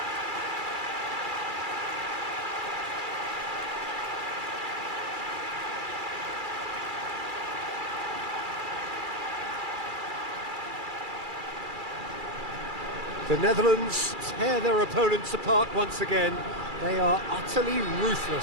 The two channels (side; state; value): left; late; 2.3 ms